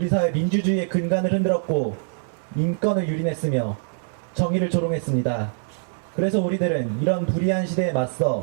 사회 민주주의의 근간을 흔들었고 인권을 유린했으며 정의를 조롱했습니다. 그래서 우리들은 이런 불의한 시대에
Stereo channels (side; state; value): left; silent; digital silence